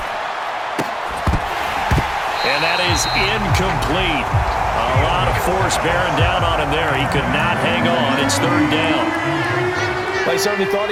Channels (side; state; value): both; identical; correlation 1.00